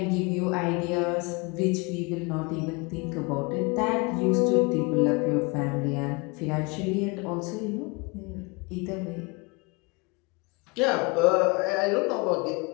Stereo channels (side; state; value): right; quieter; 28.3 dB